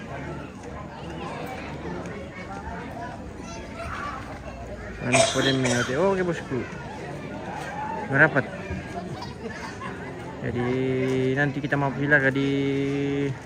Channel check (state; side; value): identical; both; correlation 1.00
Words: Boleh mengerti. Oh, oke bosku. Merapat. Jadi nanti kita mau silaga di